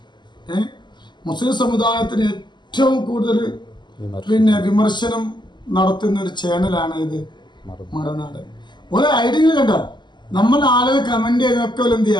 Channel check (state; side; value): late; right; 0.21 ms